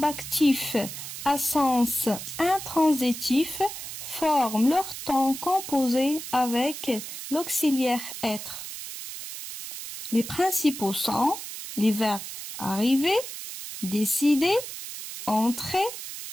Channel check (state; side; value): noise; right; hiss, 9 dB below the sound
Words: actifs à sens intransitif forment leur temps composé avec l'auxiliaire être. Les principaux sont les verbes arriver, décider, entrer,